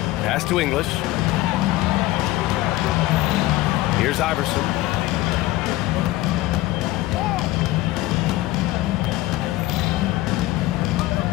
Pass to English. Here's Iverson.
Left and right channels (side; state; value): right; quieter; 17.4 dB